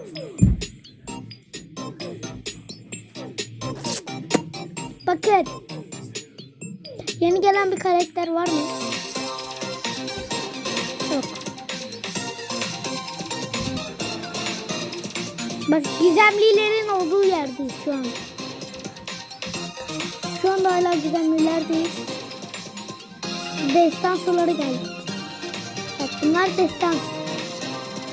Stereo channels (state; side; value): identical; both; correlation 1.00